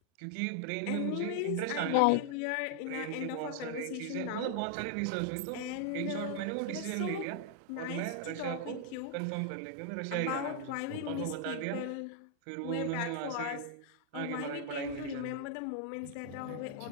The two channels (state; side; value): different; both; correlation 0.00